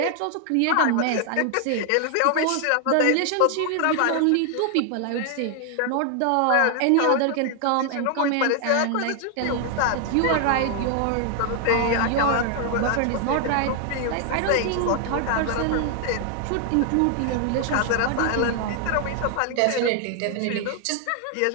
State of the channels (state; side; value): different; both; correlation 0.00